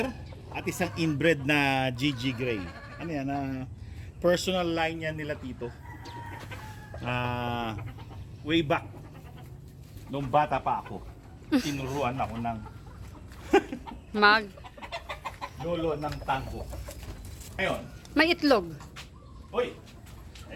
at isang inbred na GG Gray. Ano yan? Personal line yan nila Tito. Way back. Nung bata pa ako. Tinuruan ako ng lolo ng tango. Ngayon, May itlog. uy!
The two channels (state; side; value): identical; both; correlation 1.00